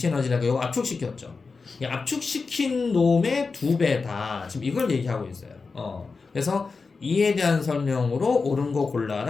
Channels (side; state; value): right; quieter; 4.5 dB